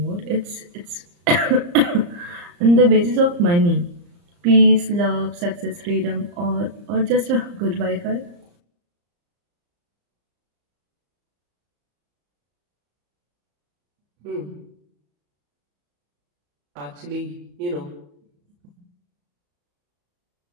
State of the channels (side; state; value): left; late; 34 ms